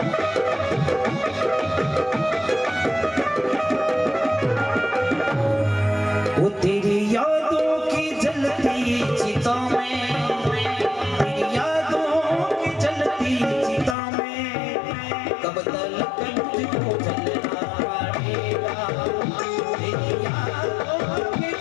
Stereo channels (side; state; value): right; drops out; at 14.0 s